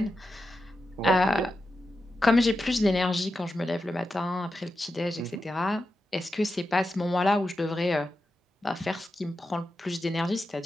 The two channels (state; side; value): normal; both; correlation 0.89